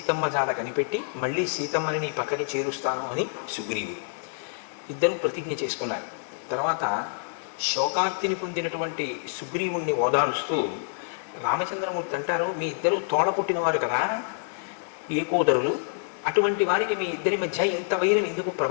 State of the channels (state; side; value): silent; right; digital silence